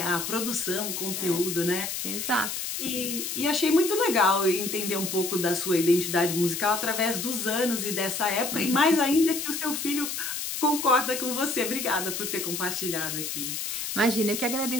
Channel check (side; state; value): left; noise; hiss, 4 dB below the sound